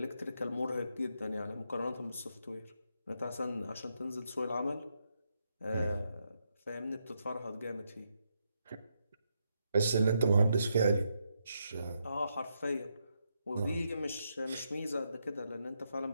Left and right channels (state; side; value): inverted; both; correlation -0.81